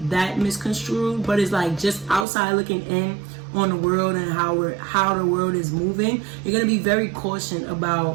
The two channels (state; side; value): drops out; left; at 2.2 s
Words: that misconstrued, but it's like just outside looking in on the world and how the world is moving. You're gonna be very cautious